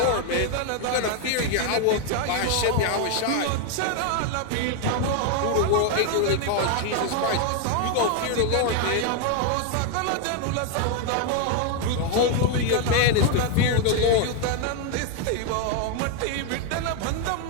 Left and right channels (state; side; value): different; both; correlation 0.00